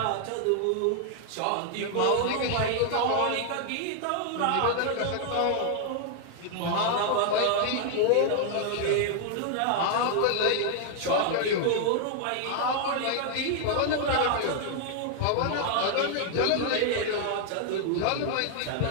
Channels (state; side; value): different; both; correlation 0.00